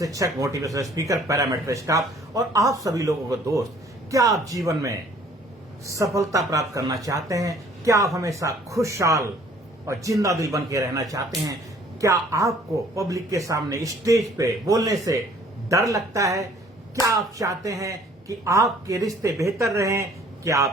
मोटिवेशनल स्पीकर, पैरामीटर स्टाफ और आप सभी लोगों को दोस्त। क्या आप जीवन में सफलता प्राप्त करना चाहते हैं? क्या आप हमेशा खुशहाल और जिंदा दिल बन के रहना चाहते हैं? क्या आपको पब्लिक के सामने स्टेज पे बोलने से डर लगता है? क्या आप चाहते हैं कि आपके रिश्ते बेहतर रहें? क्या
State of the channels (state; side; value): normal; both; correlation 0.57